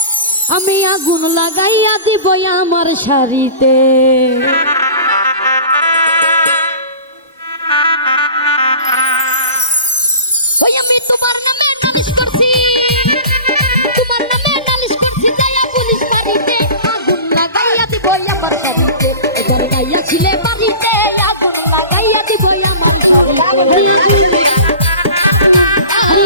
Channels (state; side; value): inverted; both; correlation -0.38